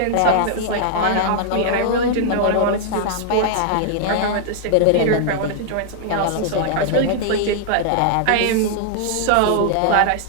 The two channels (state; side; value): different; both; correlation -0.01